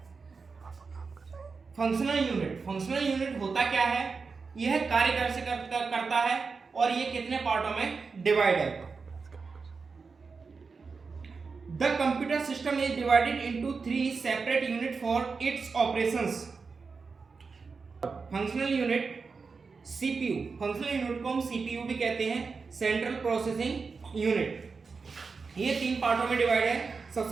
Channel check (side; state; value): left; quieter; 4.8 dB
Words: फंक्शनल यूनिट होता क्या है, यह कार्य कैसे करता है और ये कितने पार्टों में डिवाइड है। The computer system is divided into 3 separate unit for its operations. Functional unit CPU, functional unit को हम CPU भी कहते हैं, सेंट्रल प्रोसेसिंग यूनिट। ये 3 पार्टों में डिवाइड है।